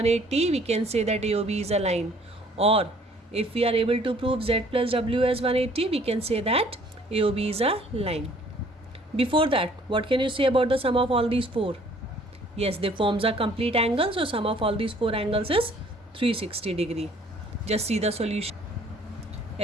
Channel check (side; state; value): both; normal; correlation 0.57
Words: we can say that AOB is a line, or if we are able to prove z plus w as 180 we can say that AOB is a line. Before that, what can you say about the sum of all these 4? Yes, they forms a complete angle, so sum of all these 4 angles is 360 degree. Just see the solution.